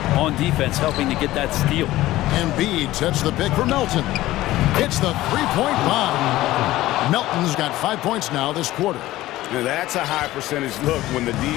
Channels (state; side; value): quieter; right; 16.2 dB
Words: on defense, helping to get that steal. Embiid sets the pick for Melton. It's the three-point bomb. Melton's got 5 points now this quarter. Now that's a high percentage look when the